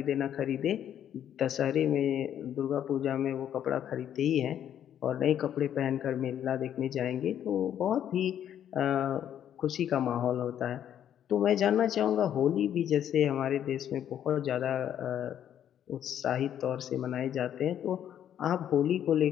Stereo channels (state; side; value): quieter; right; 10.0 dB